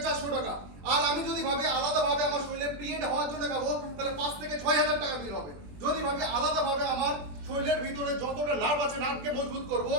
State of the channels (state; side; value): late; left; 21 ms